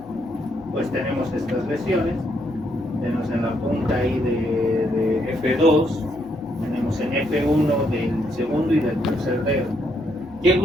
pues tenemos estas lesiones, tenemos en la punta ahí de F2, tenemos en F1 del segundo y del tercer dedo. ¿Qué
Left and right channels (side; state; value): left; noise; hum, 22 dB below the sound